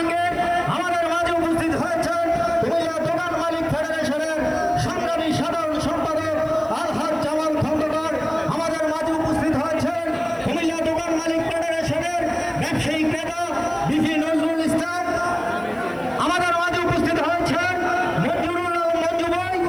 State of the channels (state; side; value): noise; right; hiss, 28 dB below the sound